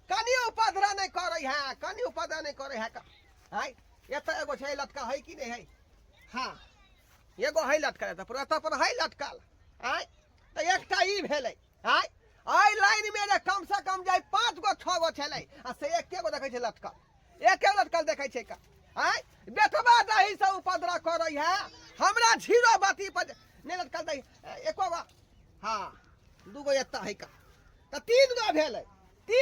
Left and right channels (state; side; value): identical; both; correlation 1.00